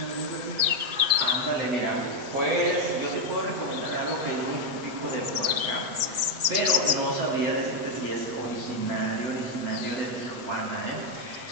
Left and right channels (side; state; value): left; late; 8.1 ms